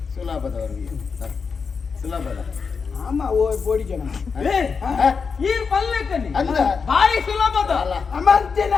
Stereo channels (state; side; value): quieter; right; 5.5 dB